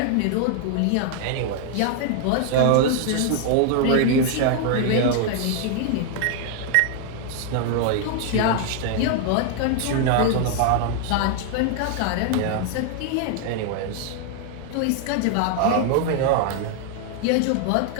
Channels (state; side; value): different; both; correlation 0.00